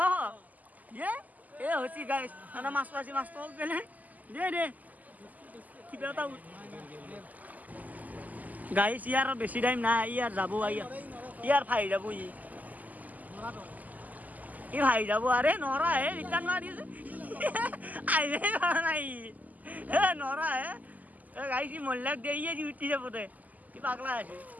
এ হৈছে গাই মাছটো আছে মাছটো পেলে দে কিবা এটা গাইছ ইয়াৰ বেছি টাইম নাই ইয়াৰ যাব ইয়াৰ ভাই যাব ই ভাই যাব আৰে নৰা হে ৰিটাৰ্ণ মাৰি আহিলে নাই হে নৰা হে গাইছ মহিলাক দে ইয়ে উঠি যাব দে কি পাগলা আছে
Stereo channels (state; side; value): late; left; 0.080 ms